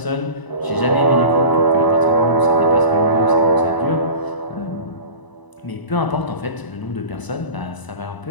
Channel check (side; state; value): right; late; 1.0 ms